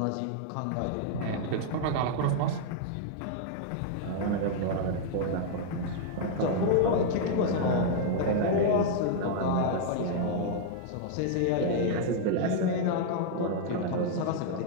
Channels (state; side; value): different; both; correlation -0.01